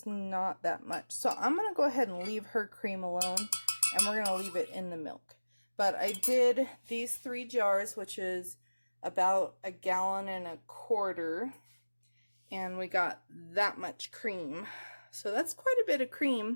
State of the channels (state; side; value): inverted; both; correlation -1.00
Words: not that much. So I'm going to go ahead and leave her cream alone, and we're going to leave it in the milk. But I did these 3 jars, which is about 1.25 gallons, and we got that much cream. So that's quite a bit of